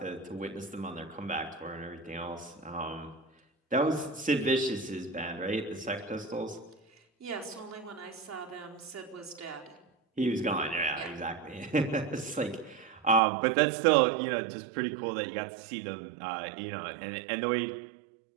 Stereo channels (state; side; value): drops out; left; at 13.2 s